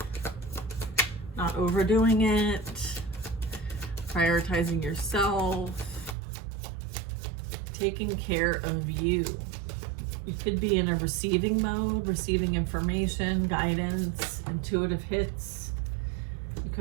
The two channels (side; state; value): left; drops out; at 6.2 s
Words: Not overdoing it, prioritizing yourself, taking care of you. You could be in a receiving mode, receiving information, guidance, intuitive hits. You